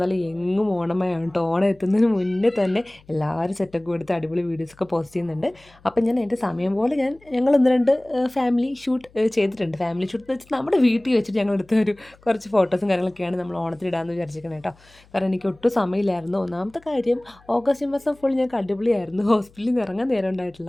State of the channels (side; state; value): left; noise; hum, 28 dB below the sound